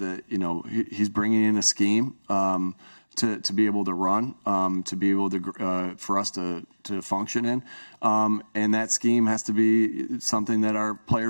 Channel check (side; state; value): both; inverted; correlation -1.00